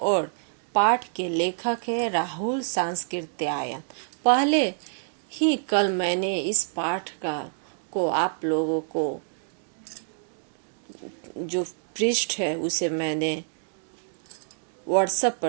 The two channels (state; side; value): silent; left; digital silence